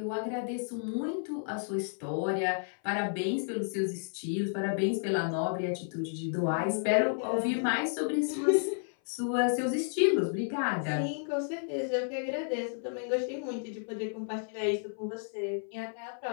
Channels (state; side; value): silent; right; 56 dB below the other